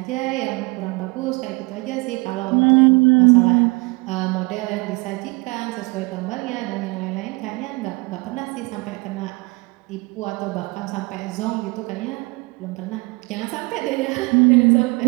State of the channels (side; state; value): left; quieter; 26.6 dB